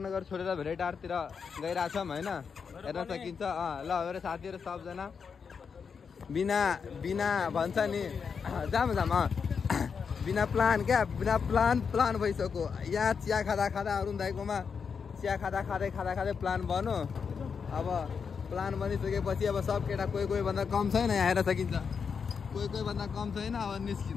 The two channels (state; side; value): quieter; right; 6.1 dB